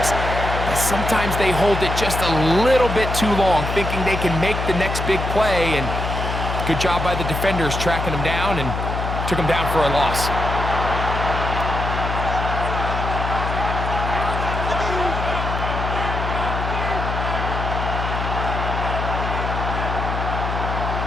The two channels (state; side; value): noise; left; hum, 3 dB below the sound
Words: that sometimes they hold it just a little bit too long, thinking they can make the next big play, and good job by the defenders tracking him down and took him down for a loss.